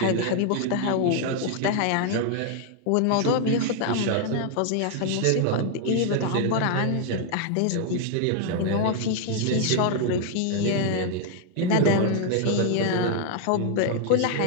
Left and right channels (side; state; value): both; different; correlation 0.00